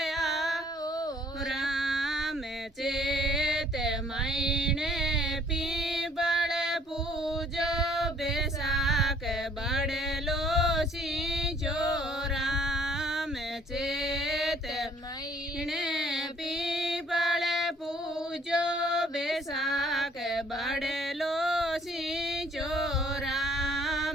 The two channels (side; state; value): both; normal; correlation 0.59